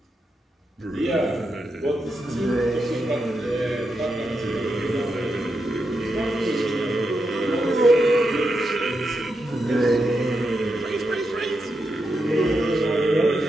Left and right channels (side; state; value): both; normal; correlation 0.85